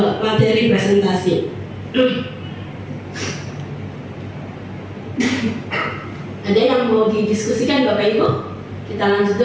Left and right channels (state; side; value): identical; both; correlation 1.00